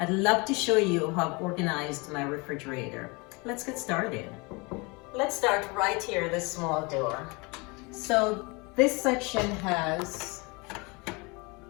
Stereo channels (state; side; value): quieter; right; 28.0 dB